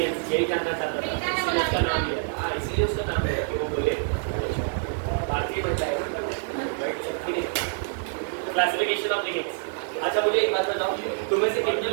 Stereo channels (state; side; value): silent; left; digital silence